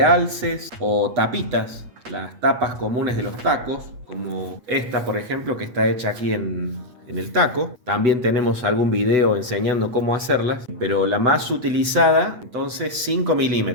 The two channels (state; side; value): late; left; 8.1 ms